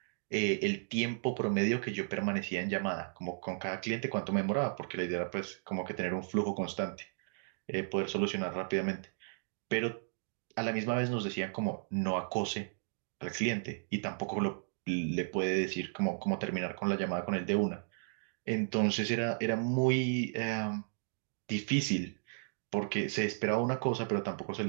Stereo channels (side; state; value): left; silent; digital silence